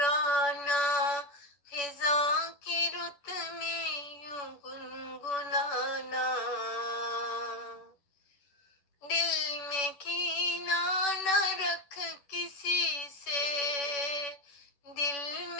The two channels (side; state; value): right; late; 11 ms